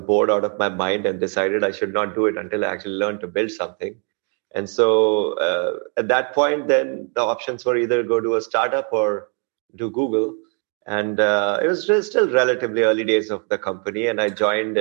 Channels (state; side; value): quieter; left; 39.9 dB